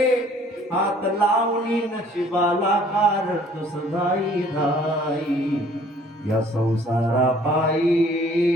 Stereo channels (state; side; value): normal; both; correlation 0.56